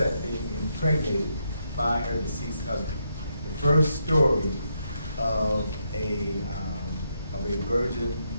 being impregnated by her deceased husband. The first story of a virgin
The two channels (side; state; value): both; inverted; correlation -0.80